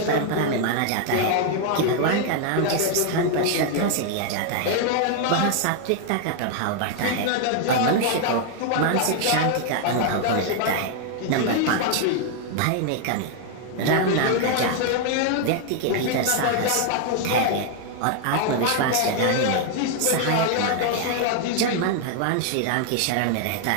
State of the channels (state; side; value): different; both; correlation 0.00